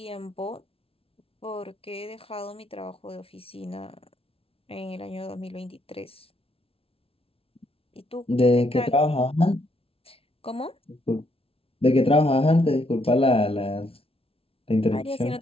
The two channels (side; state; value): right; late; 0.27 ms